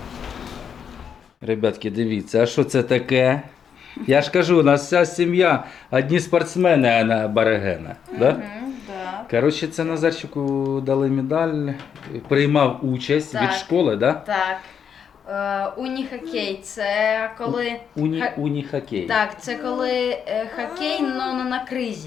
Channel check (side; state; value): right; quieter; 7.6 dB